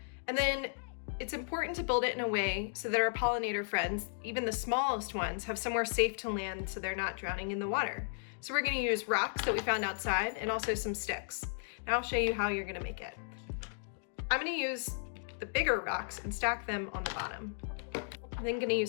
and then it's important to build it in a way so that our pollinator friends, even the smallest ones, have somewhere safe to land so they're not drowning in the water. So we're going to use rocks that we found outside and also some sticks. Now I'll show you how you're going to make it. I'm going to use the bigger rocks and stack them on the bottom. I'm then going to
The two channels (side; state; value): right; silent; digital silence